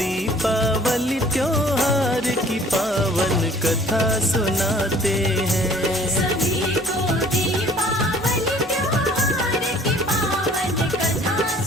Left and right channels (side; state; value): both; normal; correlation 0.53